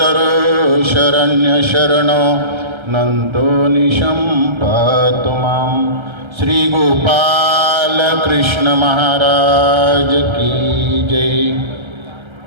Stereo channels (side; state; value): left; late; 1.3 ms